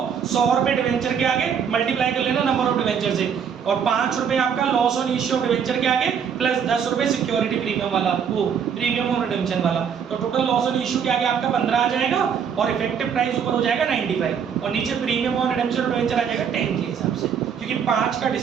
100 रुपए डिवेंचर के आगे मल्टीप्लाई कर लेना नंबर ऑफ डिवेंचर से, और 5 रुपए आपका loss on issue of debenture के आगे, प्लस 10 रुपए सिक्योरिटी प्रीमियम वाला, वो प्रीमियम ऑन रिडेम्पशन वाला, तो टोटल लॉस ऑन इश्यू के आगे आपका 15 आ जाएगा, और इफेक्टिव प्राइस ऊपर हो जाएगा 95, और नीचे प्रीमियम ऑन रिडेम्पशन और डिवेंचर आ जाएगा 10 के हिसाब से, क्योंकि 5 का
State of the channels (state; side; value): quieter; left; 7.4 dB